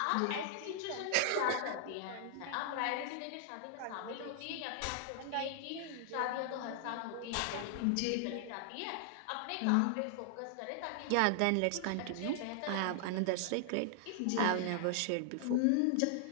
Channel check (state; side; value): different; both; correlation -0.01